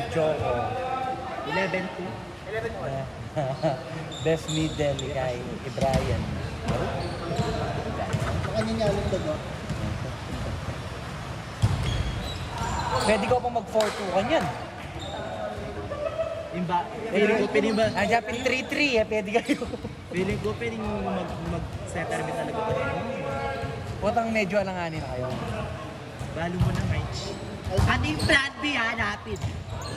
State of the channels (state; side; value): identical; both; correlation 1.00